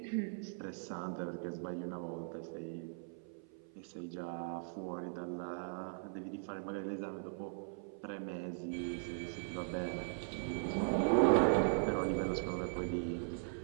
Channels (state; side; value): silent; left; 51 dB below the other